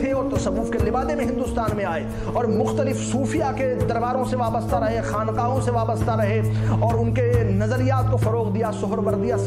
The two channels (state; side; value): identical; both; correlation 1.00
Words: اور تصوف کے لبادے میں ہندوستان میں آئے اور مختلف صوفیہ کے درباروں سے وابستہ رہے، خانقاہوں سے وابستہ رہے اور ان کے نظریات کو فروغ دیا۔ سہروردیہ